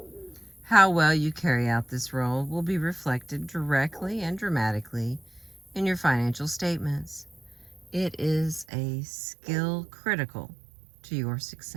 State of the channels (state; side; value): drops out; left; at 8.7 s